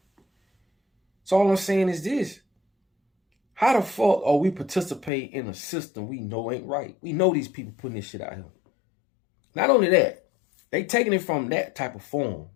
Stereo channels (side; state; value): right; drops out; at 5.1 s